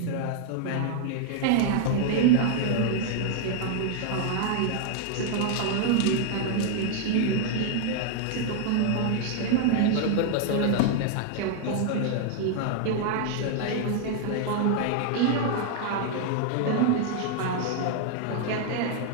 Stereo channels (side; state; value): both; different; correlation 0.00